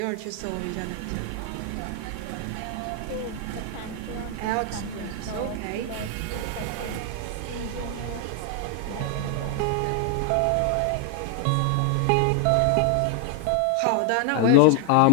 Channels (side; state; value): both; different; correlation 0.00